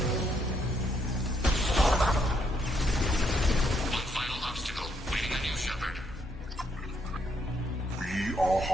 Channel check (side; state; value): both; normal; correlation 0.74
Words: One final obstacle. Waiting on you, Shepard. We are